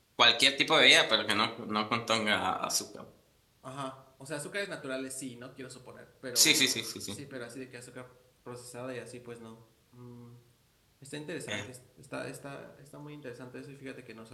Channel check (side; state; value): both; identical; correlation 1.00